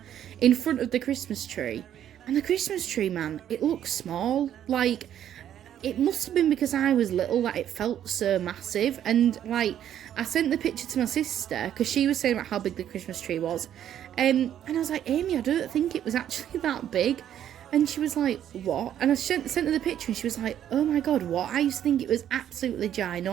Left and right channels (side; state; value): left; quieter; 10.5 dB